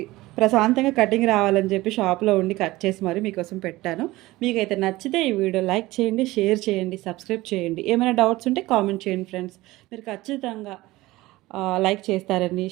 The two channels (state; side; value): quieter; left; 18.8 dB